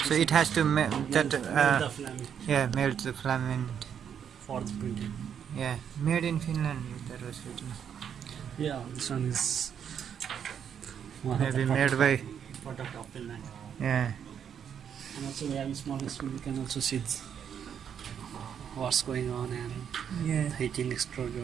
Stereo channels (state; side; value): quieter; left; 8.2 dB